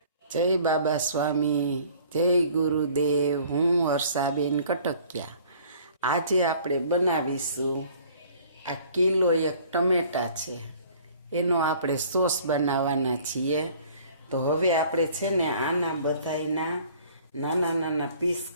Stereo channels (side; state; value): both; inverted; correlation -0.53